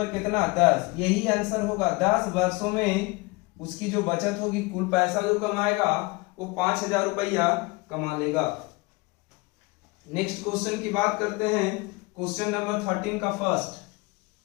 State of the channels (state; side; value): quieter; right; 25.3 dB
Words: कितना 10, यही आंसर होगा। 10 वर्षों में उसकी जो बचत होगी, कुल पैसा जो कमाएगा वो 5,000 रुपया कमा लेगा। नेक्स्ट क्वेश्चन की बात करते हैं, क्वेश्चन नंबर 13 का फर्स्ट।